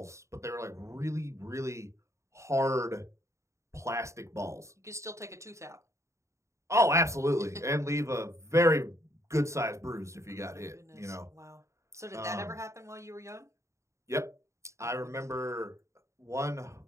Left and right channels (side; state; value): left; late; 0.14 ms